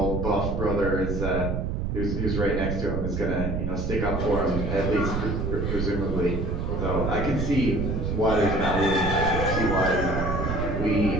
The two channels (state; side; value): noise; right; rumble, 1 dB below the sound